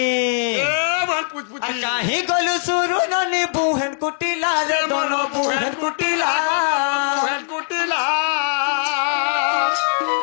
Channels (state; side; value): silent; right; 66 dB below the other